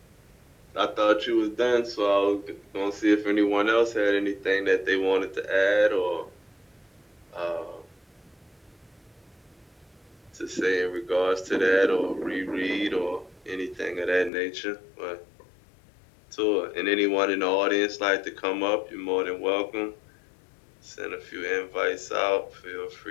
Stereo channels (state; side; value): drops out; right; at 14.3 s